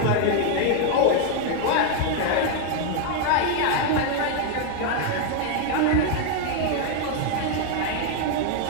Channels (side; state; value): both; different; correlation 0.00